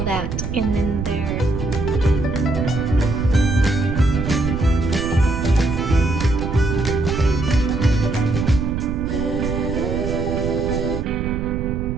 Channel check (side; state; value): right; noise; rumble, 4 dB below the sound